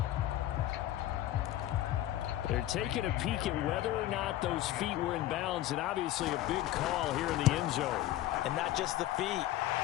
They're taking a peek at whether or not those feet were in bounds, and obviously a big call here in the end zone. And not just the feet.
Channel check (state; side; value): quieter; right; 14.0 dB